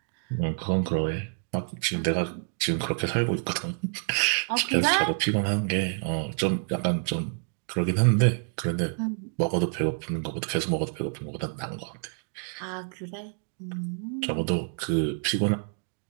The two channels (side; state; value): left; silent; 59 dB below the other